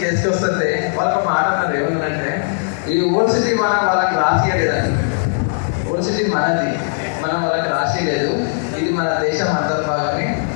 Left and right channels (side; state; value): right; silent; digital silence